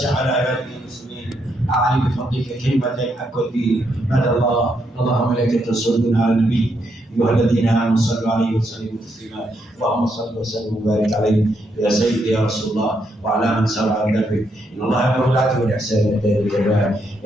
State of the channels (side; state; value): both; normal; correlation 0.78